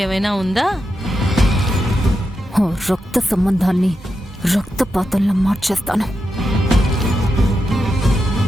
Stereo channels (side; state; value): both; normal; correlation 0.87